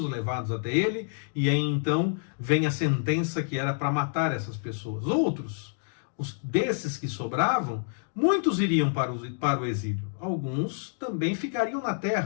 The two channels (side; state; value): right; silent; digital silence